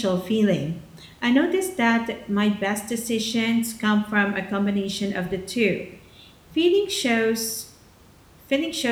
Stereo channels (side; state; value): both; identical; correlation 1.00